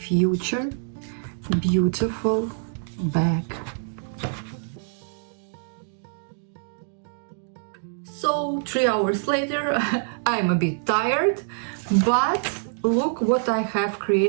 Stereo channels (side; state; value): left; silent; digital silence